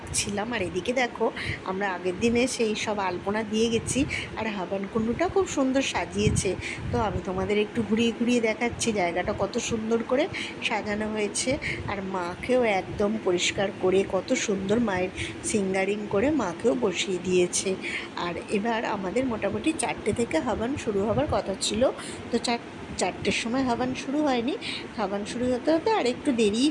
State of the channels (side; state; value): both; identical; correlation 1.00